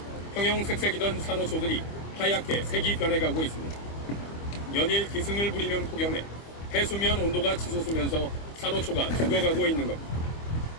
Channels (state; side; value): late; right; 25 ms